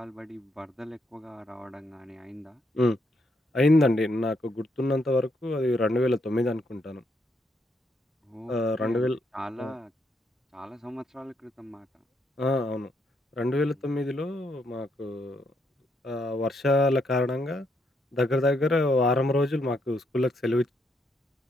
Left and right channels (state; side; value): normal; both; correlation 0.76